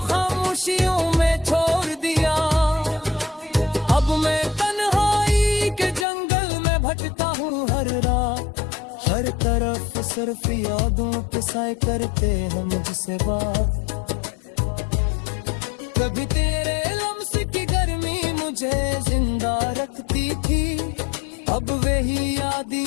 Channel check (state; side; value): drops out; right; at 6.1 s